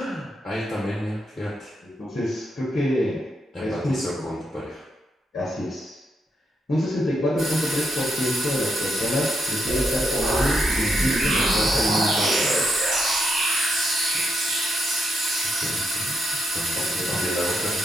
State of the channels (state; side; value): normal; both; correlation 0.80